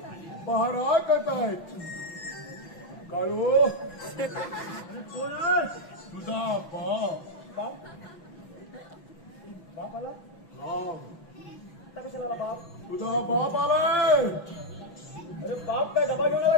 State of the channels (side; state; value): right; late; 6.0 ms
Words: पहारा करतायत. काळू तुझा बाप आला. कशाला बाप? तुझा बाप आलाय. अरे बाप काय डबा घेऊन आला